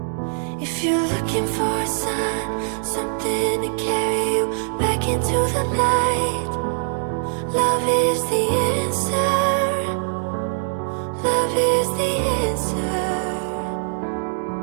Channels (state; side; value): silent; left; digital silence